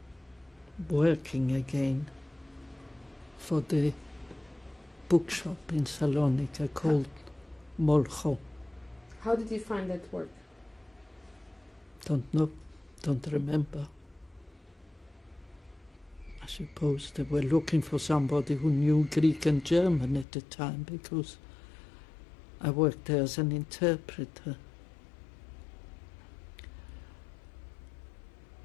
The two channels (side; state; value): right; drops out; at 20.2 s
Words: working again for the bookshop in Saloniki called Molcho. How did you find that work? Don't know, don't remember. I suppose they were looking for somebody who knew Greek and German at the time, because I worked there as an interpreter.